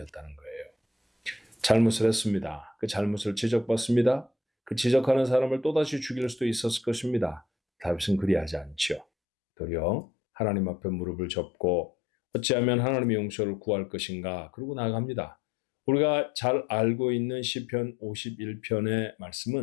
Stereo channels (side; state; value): right; drops out; at 9.1 s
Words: 거예요. 잘못을 했습니다. 그 잘못을 지적받습니다. 그 지적하는 사람을 또다시 죽일 수도 있었을 것입니다. 다윗은 그리하지 않죠. 도리어 하나님 앞에 무릎을 접고 어찌하면 하나님의 용서를 구할 것인가 그러고 나아갑니다. 우리가 잘 알고 있는 시편 51편의